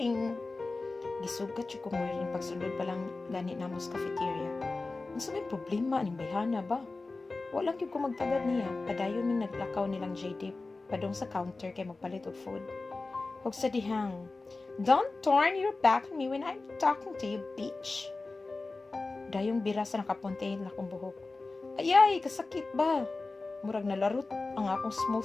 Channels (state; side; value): quieter; right; 3.5 dB